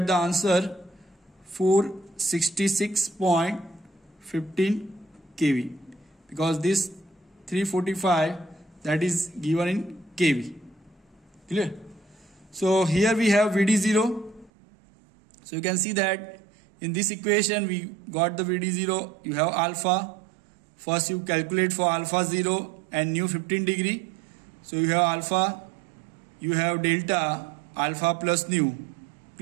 the answer 466.15 kV, because this 345 that is given in kV. Clear? So here we have VD0. So you can see that in this equation we got the VD0. You have alpha. First you calculate for alpha 0 and nu 15 degree. So you have alpha, you have delta, alpha plus nu.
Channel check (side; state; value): left; drops out; at 14.5 s